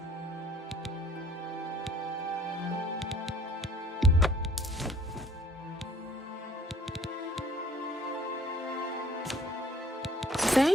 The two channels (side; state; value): both; normal; correlation 0.56